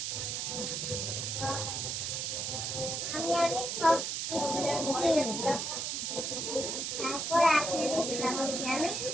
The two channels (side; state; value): right; noise; hiss, 2 dB below the sound